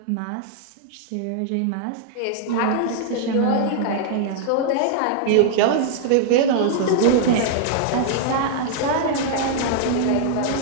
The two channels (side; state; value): both; different; correlation -0.01